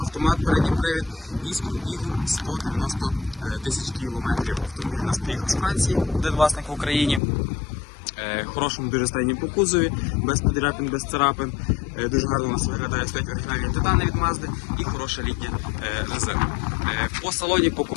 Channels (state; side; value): drops out; right; at 7.2 s